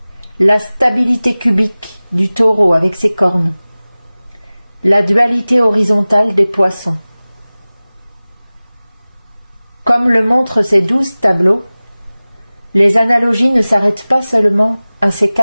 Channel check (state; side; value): inverted; both; correlation -0.98